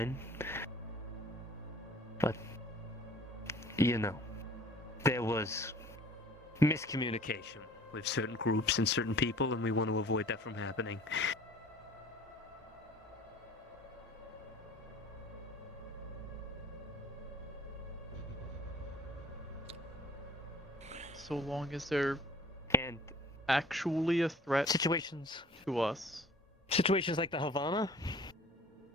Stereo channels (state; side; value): normal; both; correlation 0.50